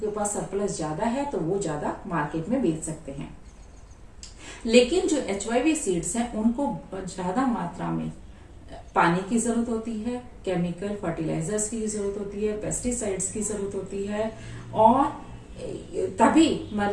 पास सरप्लस ज्यादा है तो वो ज्यादा मार्केट में बेच सकते हैं। लेकिन जो HYV सीड्स हैं उनको ज्यादा मात्रा में पानी की जरूरत होती है, केमिकल फर्टिलाइजर्स की जरूरत होती है, पेस्टिसाइड्स की जरूरत होती है, और तभी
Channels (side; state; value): both; identical; correlation 1.00